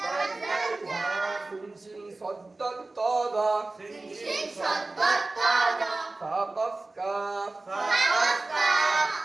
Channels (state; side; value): quieter; left; 3.1 dB